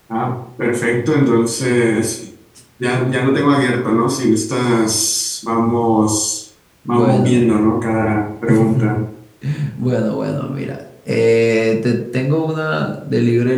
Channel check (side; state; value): both; identical; correlation 1.00